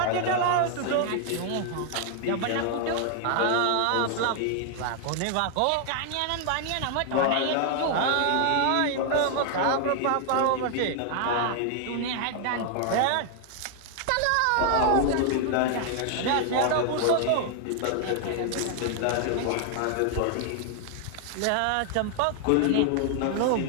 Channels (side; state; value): both; different; correlation 0.00